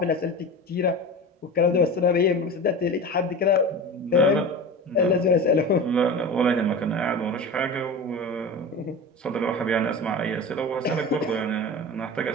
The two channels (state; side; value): normal; both; correlation 0.30